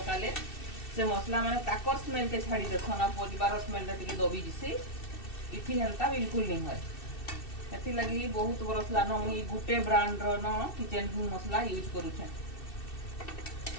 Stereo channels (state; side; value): late; right; 2.7 ms